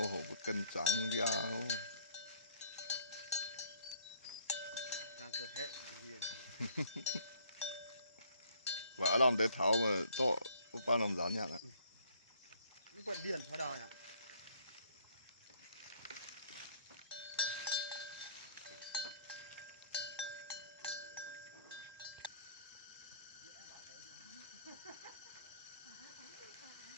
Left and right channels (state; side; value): inverted; both; correlation -0.60